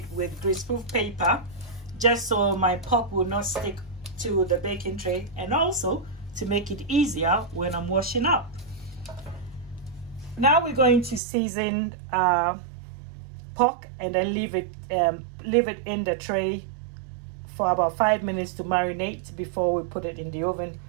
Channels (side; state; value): left; drops out; at 11.2 s